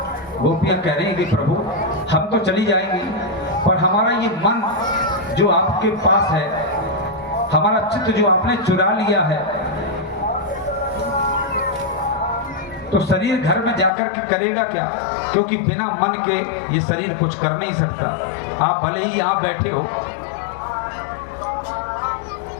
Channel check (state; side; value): drops out; right; at 13.9 s